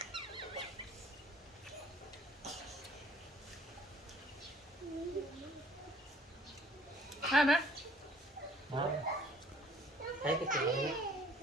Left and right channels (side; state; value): both; normal; correlation 0.57